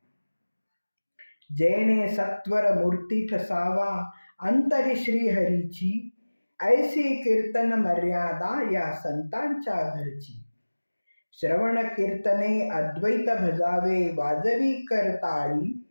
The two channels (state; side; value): inverted; both; correlation -1.00